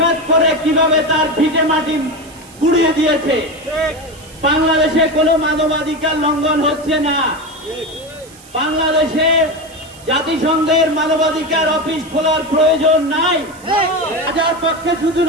করে কিভাবে তার ভিটে মাটি গুড়িয়ে দিয়েছে। বাংলাদেশে কোনো মানবাধিকার লঙ্ঘন হচ্ছে না। বাংলাদেশে জাতিসংঘের মানবাধিকার অফিস খোলার প্রয়োজন নাই। রাজার পক্ষে শুধু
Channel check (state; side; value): noise; right; hiss, 23 dB below the sound